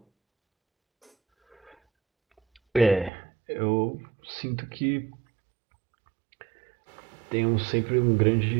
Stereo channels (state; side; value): drops out; left; at 3.1 s